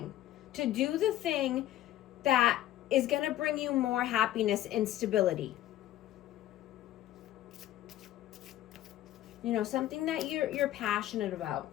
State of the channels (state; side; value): quieter; right; 13.5 dB